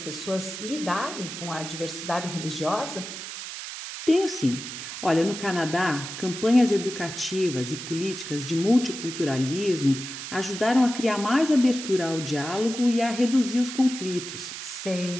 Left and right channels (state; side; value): noise; right; hiss, 9 dB below the sound